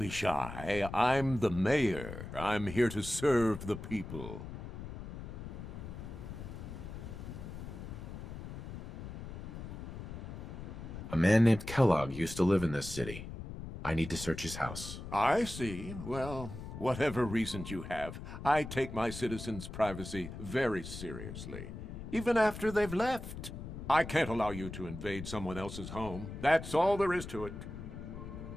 shy. I'm the mayor. I'm here to serve the people. A man named Kellogg used to live in this city. I need to search his house. I see. Well, whatever reasons you have, I take my citizens' privacy very seriously. Even after they've left. I can't allow you to invade someone else's home. That's all there is to it.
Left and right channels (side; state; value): left; noise; rumble, 9 dB below the sound